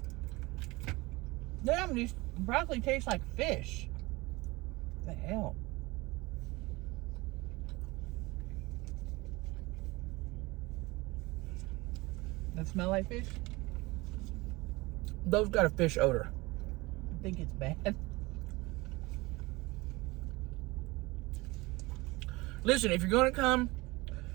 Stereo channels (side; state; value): left; quieter; 22.5 dB